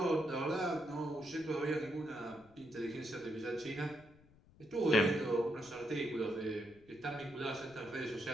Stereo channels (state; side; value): noise; left; rumble, 25 dB below the sound